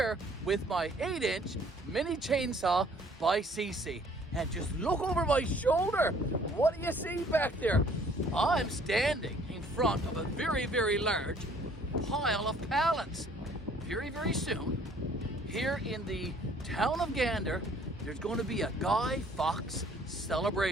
with my 8-inch mini chainsaw by Seesii, and just look over my shoulder. What do you see back there? I'm standing in front of a very large pile of pallets. Very soon, here in the town of Gander, there's going to be a Guy Fawkes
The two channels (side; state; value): both; normal; correlation 0.58